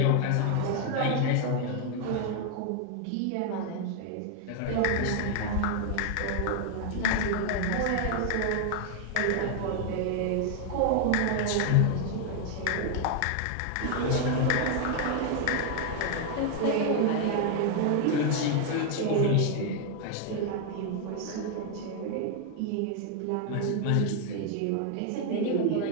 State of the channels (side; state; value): both; different; correlation 0.00